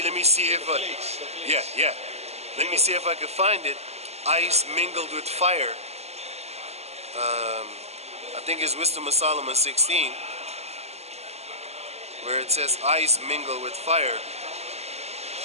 me see if yeah. Let me see if I can find it. Ice mingled with fire. I think it's Wisdom of Solomon 16, where it says ice mingled with fire.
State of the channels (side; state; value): left; late; 0.31 ms